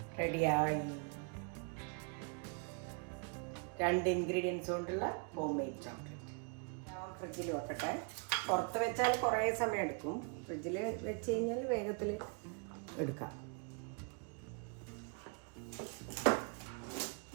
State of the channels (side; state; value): left; quieter; 37.0 dB